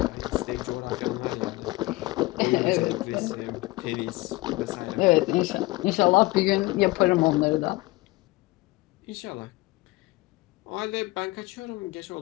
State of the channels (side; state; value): right; quieter; 21.0 dB